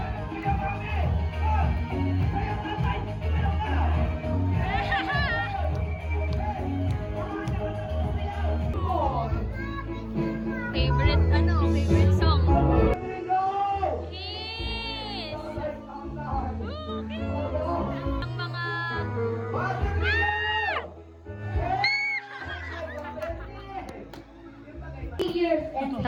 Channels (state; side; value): identical; both; correlation 1.00